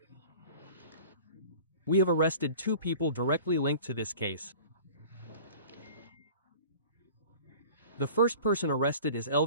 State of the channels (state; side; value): inverted; both; correlation -0.43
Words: We have arrested 2 people directly linked to this case. The first person arrested is